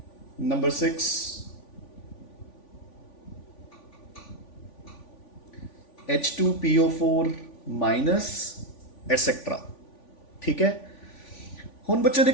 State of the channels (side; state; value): right; late; 3.5 ms